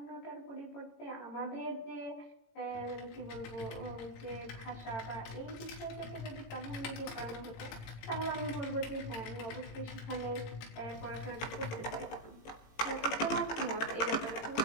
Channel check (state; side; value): late; right; 18 ms